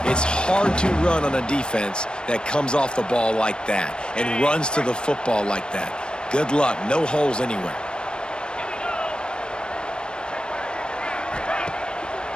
It's hard to run on a defense that comes off the ball like that and runs to the football like that. Good luck. No holes anywhere.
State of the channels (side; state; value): right; late; 0.053 ms